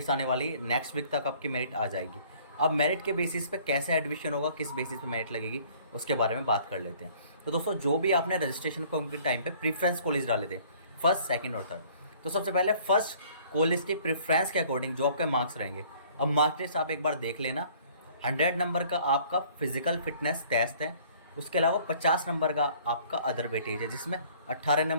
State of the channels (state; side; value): inverted; both; correlation -0.56